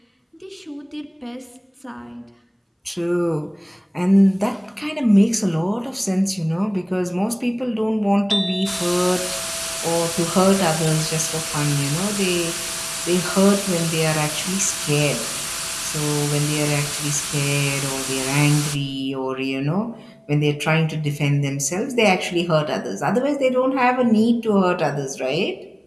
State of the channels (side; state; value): both; identical; correlation 1.00